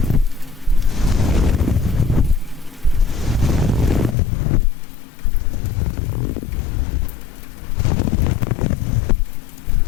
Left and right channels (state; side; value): drops out; right; at 4.2 s